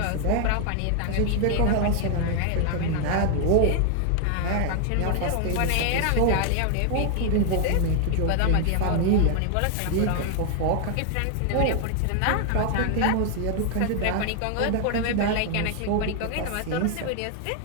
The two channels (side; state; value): both; different; correlation 0.00